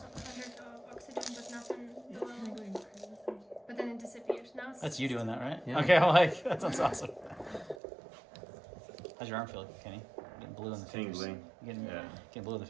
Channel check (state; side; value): drops out; left; at 7.8 s